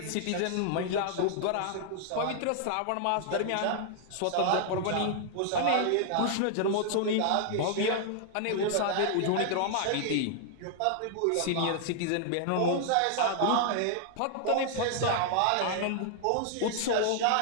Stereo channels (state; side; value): different; both; correlation 0.00